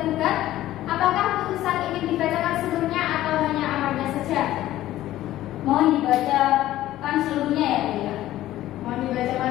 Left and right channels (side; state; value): right; quieter; 14.4 dB